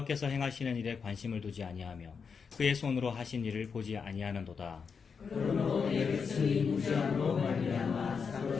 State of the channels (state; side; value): quieter; right; 5.8 dB